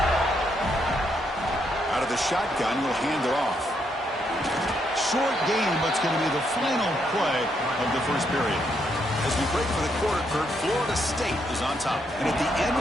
Out of the shotgun, will hand it off. Short game, but it's going to be the final play of the 1st period. As we break for the quarter, Kurt, Florida State is on top. And at the end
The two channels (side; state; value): both; normal; correlation 0.76